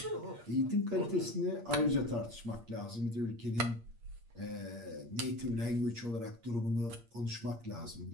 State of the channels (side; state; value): left; late; 8.5 ms